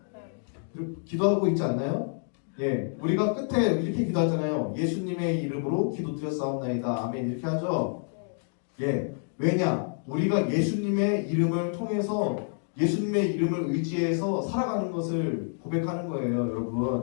기도하고 있지 않나요? 예, 우리가 끝에 이렇게 기도하잖아요. 예수님의 이름으로 기도드렸사옵나이다. 아멘 이렇게 하죠? 예, 왜냐? 우리가 예수님의 이름을 통해서 예수님의 이름을 의지해서 살아가는 것을 고백하는 거예요.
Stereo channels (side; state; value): right; silent; 59 dB below the other